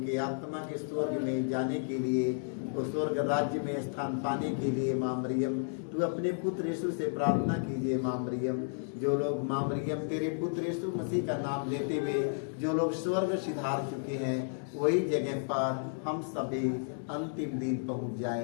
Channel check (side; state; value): right; silent; digital silence